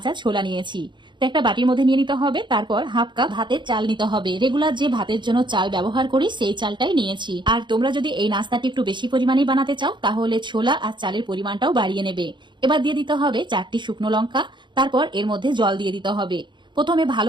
ছোলা নিয়েছি। তো একটা বাটির মধ্যে নিয়ে নিতে হবে। তারপর হাফ কাপ ভাতের চাল নিতে হবে। রেগুলার যে ভাতের জন্য চাল ব্যবহার করি সেই চালটাই নিয়েছি। আর তোমরা যদি এই নাস্তাটি একটু বেশি পরিমাণে বানাতে চাও তাহলে ছোলা আর চালের পরিমাণটাও বাড়িয়ে নেবে। এবার দিয়ে দিতে হবে 4টি শুকনো লঙ্কা। তারপর এর মধ্যে জল দিয়ে দিতে হবে। প্রথমে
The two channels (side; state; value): left; late; 0.23 ms